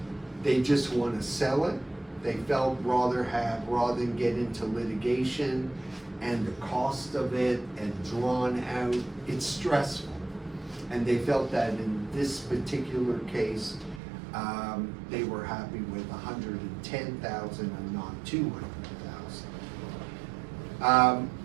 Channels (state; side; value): drops out; left; at 14.0 s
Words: They just want to sell it. They felt rather than get into litigation and the cost of it and drawn out, it's stressful. And they felt that in this particular case, they were happy with $110,000 and not $200,000.